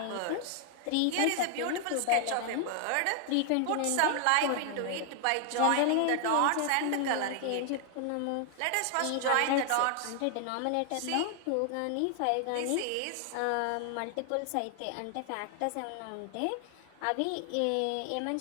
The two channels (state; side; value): different; both; correlation 0.00